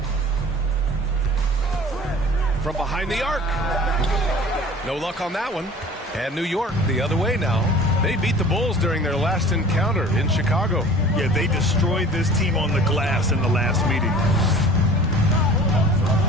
From behind the arc. No luck on that one. And New York the other way now. They beat the Bulls during their last encounter in Chicago. Yeah, they destroyed this team on the glass in the last meeting.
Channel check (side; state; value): both; normal; correlation 0.45